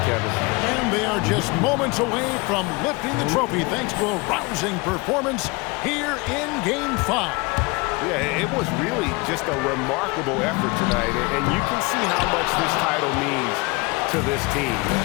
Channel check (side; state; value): right; quieter; 26.3 dB